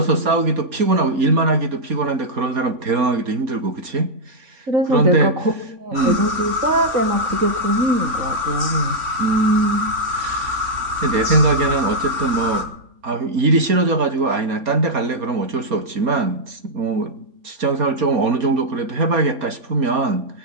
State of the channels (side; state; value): left; late; 4.3 ms